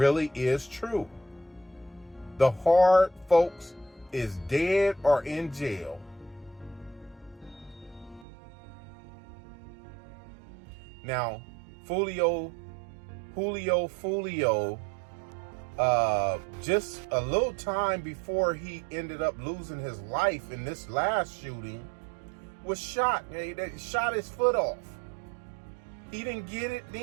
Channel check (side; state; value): left; drops out; at 8.2 s